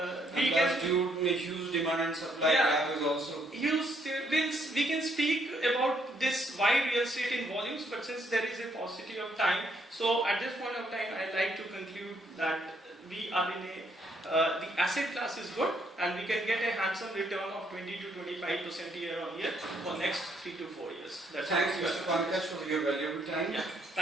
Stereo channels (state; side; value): normal; both; correlation 0.71